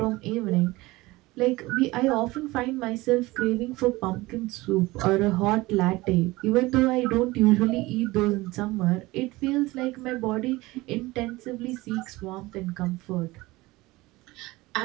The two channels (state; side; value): quieter; left; 20.4 dB